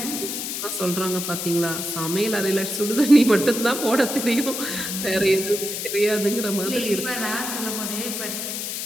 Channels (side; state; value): left; noise; hiss, 4 dB below the sound